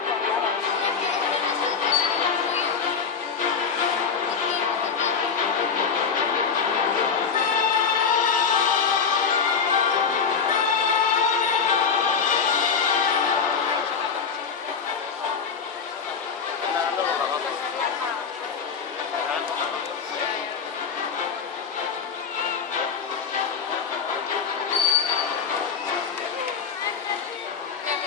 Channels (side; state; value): right; quieter; 6.1 dB